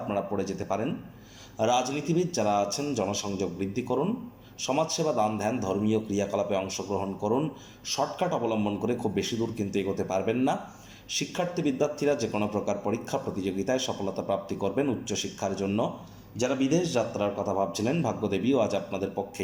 পড়ে যেতে পারেন। রাজনীতিবিদ যারা আছেন, জনসংযোগ বৃদ্ধি করুন। সমাজসেবা, দান ধ্যান, ধর্মীয় ক্রিয়াকলাপে অংশগ্রহণ করুন। শর্টকাট অবলম্বন করে খুব বেশি দূর কিন্তু এগোতে পারবেন না। শিক্ষার্থী বিদ্যার্থীরা যে কোনো প্রকার পরীক্ষা প্রতিযোগিতায় সফলতা প্রাপ্তি করবেন উচ্চশিক্ষার জন্য। যারা বিদেশ যাত্রার কথা ভাবছিলেন, ভাগ্যদেবীও আজ আপনাদের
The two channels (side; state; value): both; identical; correlation 1.00